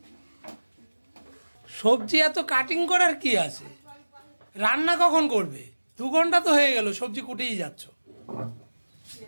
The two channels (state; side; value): inverted; both; correlation -1.00